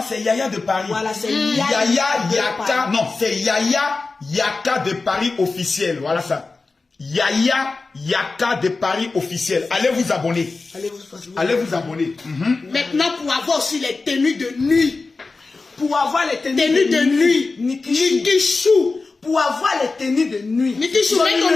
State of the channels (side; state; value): right; quieter; 3.8 dB